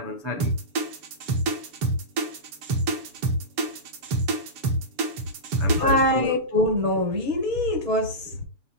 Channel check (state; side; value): late; left; 7.0 ms